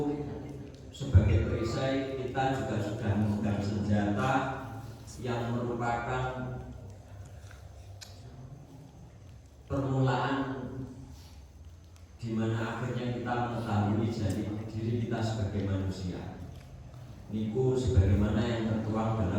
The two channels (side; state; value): both; identical; correlation 1.00